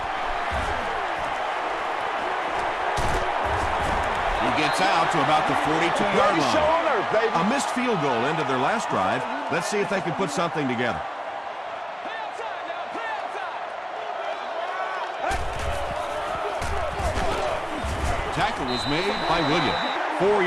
Gets out to about the 42-yard line. A missed field goal ended their last drive. Let's see if they can put something together. Tackle was made by Williams. 4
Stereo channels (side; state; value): both; identical; correlation 1.00